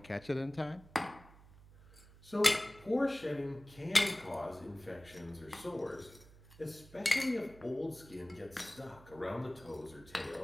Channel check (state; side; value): noise; right; hum, 22 dB below the sound